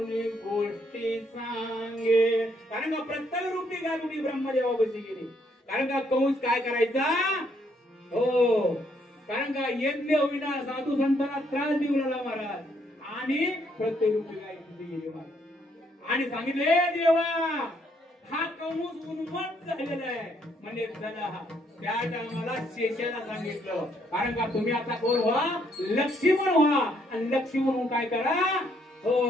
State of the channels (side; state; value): both; normal; correlation 0.71